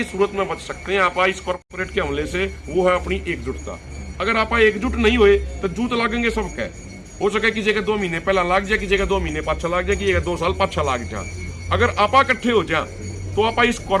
सूरत में बच सकते हैं आप इस कॉर्पोरेट के हमले से, वो है अपनी एकजुटता। अगर आप एकजुट नहीं हुए तो जूत लागेंगे सबके। हो सके किसी के 2 महीने पहला लाग जाए, किसी के 2 महीने पाछा लाग जाए, किसी के 2 साल पाछा लाग जाए। अगर आप इकट्ठे हो जाए तो आप इस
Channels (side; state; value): both; identical; correlation 1.00